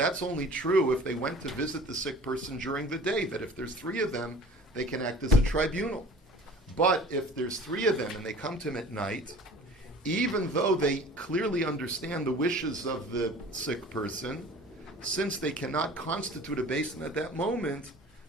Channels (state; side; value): normal; both; correlation 0.45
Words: only true if they went to visit the sick person during the day, that if there's 3 of them, they can act as a tribunal. But if there's 3 of them and they come to him at night, even though they clearly understand the wishes of the sick person, since they cannot constitute a Beis Din at that moment,